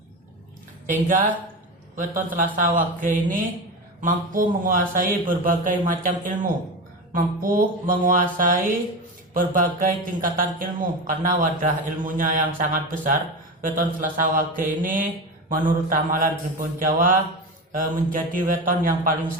sehingga weton Selasa Wage ini mampu menguasai berbagai macam ilmu, mampu menguasai berbagai tingkatan ilmu karena wadah ilmunya yang sangat besar. Weton Selasa Wage ini menurut ramalan Primbon Jawa menjadi weton yang paling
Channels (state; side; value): normal; both; correlation 0.23